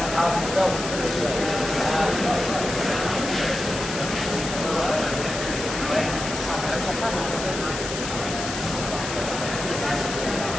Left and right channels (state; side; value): noise; left; hiss, 6 dB below the sound